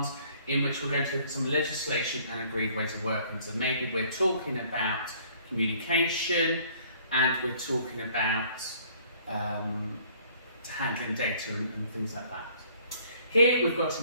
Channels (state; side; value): inverted; both; correlation -0.58